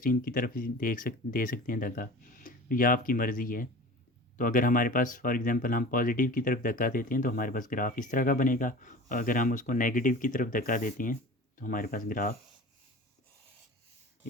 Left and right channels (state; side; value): normal; both; correlation 0.38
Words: की तरफ भी दे सकते हैं धक्का, तो यह आपकी मर्ज़ी है। तो अगर हमारे पास फॉर एग्जांपल हम पॉजिटिव की तरफ धक्का देते हैं तो हमारे पास ग्राफ इस तरह का बनेगा, और अगर हम उसको नेगेटिव की तरफ धक्का देते हैं तो हमारे पास ग्राफ